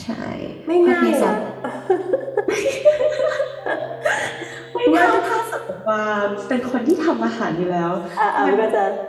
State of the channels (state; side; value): identical; both; correlation 1.00